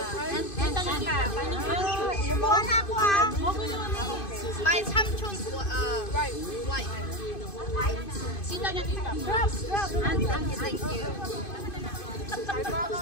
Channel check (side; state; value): right; late; 2.5 ms